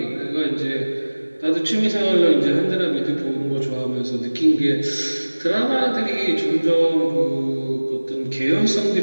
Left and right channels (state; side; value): inverted; both; correlation -1.00